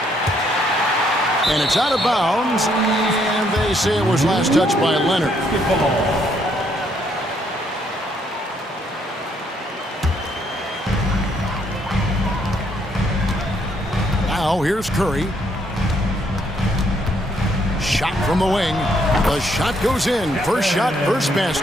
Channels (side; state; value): both; normal; correlation 0.70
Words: And it's out of bounds, and they say it was last touched by Leonard. Now here's Curry. Shot from the wing. The shot goes in. First shot, first